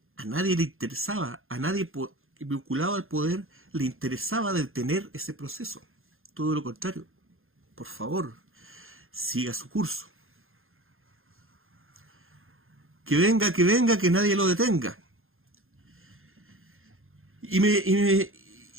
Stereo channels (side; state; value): left; late; 0.60 ms